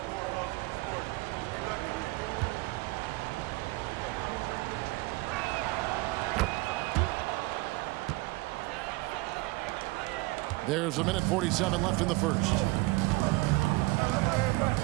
There's a minute 47 left in the first.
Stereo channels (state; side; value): quieter; left; 22.6 dB